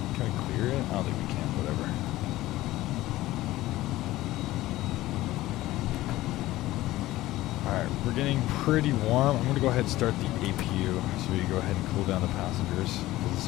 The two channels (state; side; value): quieter; right; 16.7 dB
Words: Can we clear it? I don't think we can, whatever. Alright, we're getting pretty warm. I'm going to go ahead and start the APU so we can go ahead and cool down the passengers because it's